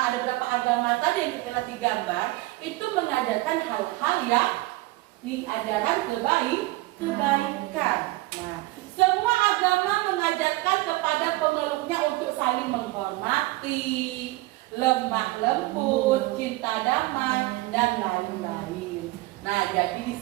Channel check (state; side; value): quieter; left; 20.0 dB